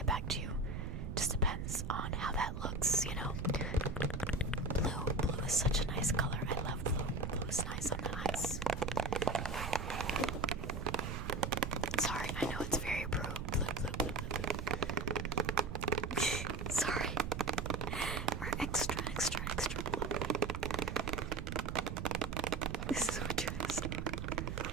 back to you. Just depends on how that looks, you know. Blue is such a nice color. I love blue. Blue is nice on the eyes. Sorry, I know it's very blue. Sorry. We're extra blue. This is what you're listening.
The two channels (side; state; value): right; noise; rumble, 4 dB below the sound